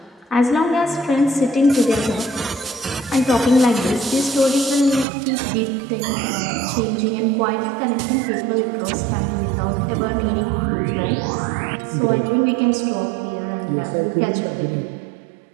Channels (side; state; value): left; drops out; at 5.1 s